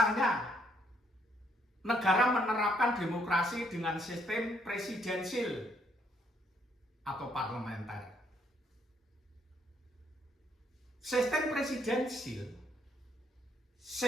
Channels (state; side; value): normal; both; correlation 0.70